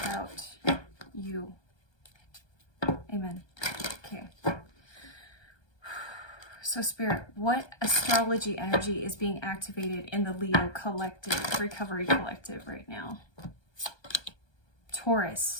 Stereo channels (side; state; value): right; late; 1.3 ms